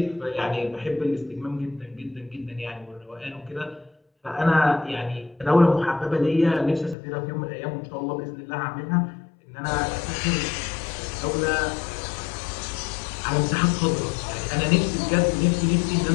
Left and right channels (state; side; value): drops out; right; at 7.0 s